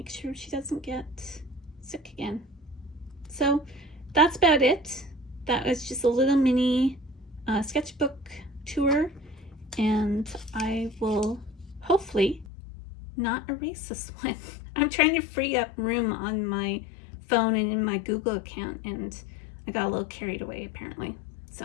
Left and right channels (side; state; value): right; drops out; at 12.5 s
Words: sure she doesn't get sick again. So that's about it. That was just a little mini sketchbook tour, and I will hopefully not erase this one. I'm trying to free up room on my phone and in my Google account, and I got a little carried away apparently.